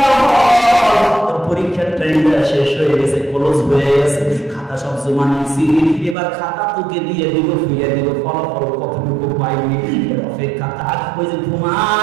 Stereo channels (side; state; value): left; drops out; at 6.2 s